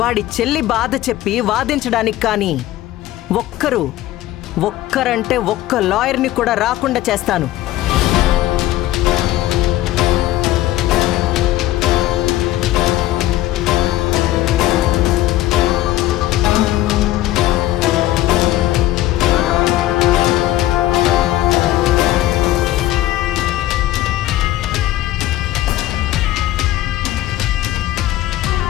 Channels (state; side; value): quieter; right; 15.2 dB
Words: వాడి చెల్లి బాధ చెప్పి వాదించడానికి కానీ ఒక్కరంటే ఒక్క లాయర్ని కూడా రాకుండా చేస్తాను.